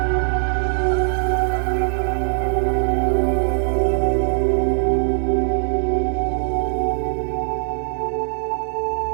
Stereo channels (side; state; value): left; silent; digital silence